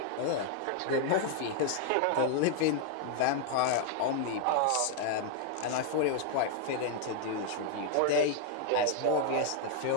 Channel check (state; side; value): different; both; correlation 0.00